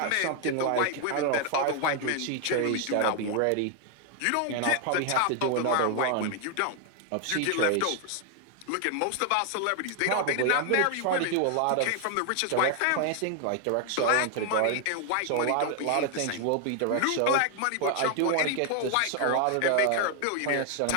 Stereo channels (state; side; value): different; both; correlation 0.00